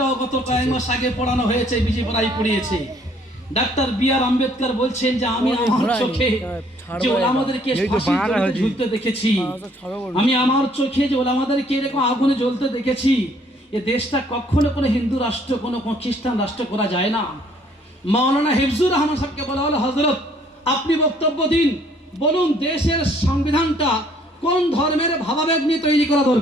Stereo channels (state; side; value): normal; both; correlation 0.62